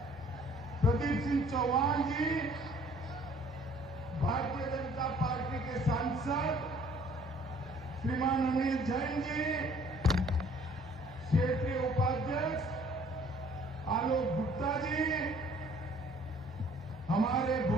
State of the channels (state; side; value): normal; both; correlation 0.57